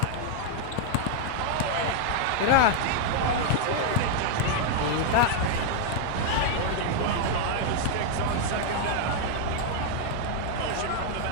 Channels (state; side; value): different; both; correlation 0.00